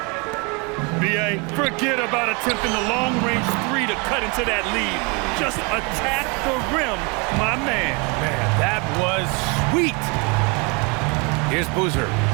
B.A., forget about attempting the long-range 3 to cut into that lead. Just attack the rim, my man. Man, that was sweet. Here's Boozer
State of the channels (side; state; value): left; quieter; 30.9 dB